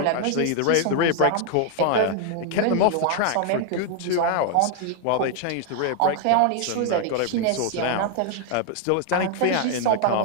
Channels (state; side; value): different; both; correlation 0.00